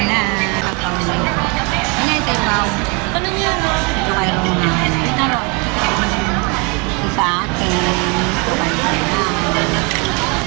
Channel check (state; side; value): quieter; left; 31.0 dB